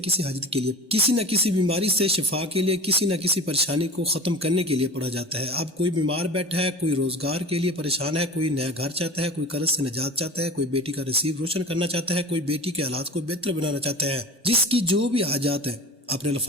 کسی حاجت کے لیے، کسی نہ کسی بیماری سے شفا کے لیے، کسی نہ کسی پریشانی کو ختم کرنے کے لیے پڑھا جاتا ہے۔ اب کوئی بیمار بیٹھا ہے، کوئی روزگار کے لیے پریشان ہے، کوئی نیا گھر چاہتا ہے، کوئی قرض سے نجات چاہتا ہے، کوئی بیٹی کا نصیب روشن کرنا چاہتا ہے، کوئی بیٹی کے حالات کو بہتر بنانا چاہتا ہے، جس کی جو بھی حاجات ہیں، اپنے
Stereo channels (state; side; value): normal; both; correlation 0.36